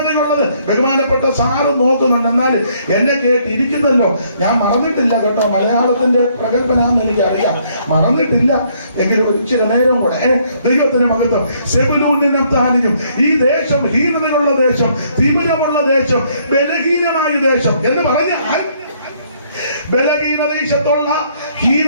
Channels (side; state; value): both; inverted; correlation -0.67